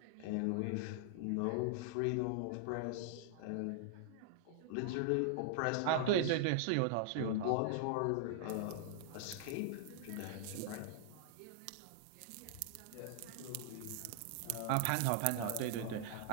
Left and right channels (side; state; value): both; different; correlation -0.01